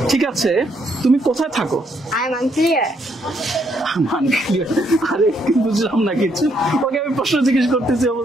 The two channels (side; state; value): both; normal; correlation 0.73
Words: ঠিক আছে, তুমি কোথায় থাকো? I'm unclear. আনক্লিয়ার? আরে বুঝলাম না কিছু। ওকে আমি প্রশ্ন জিজ্ঞেস করতেছি,